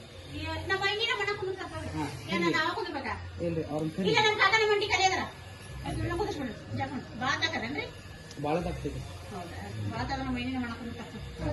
ಇಲ್ರಿ ಅವ್ರ ಬಾಳ ತಗ್ತೈತಿ.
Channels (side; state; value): both; identical; correlation 1.00